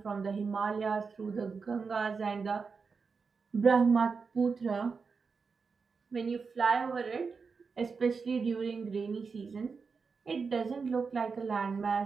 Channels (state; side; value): quieter; left; 5.1 dB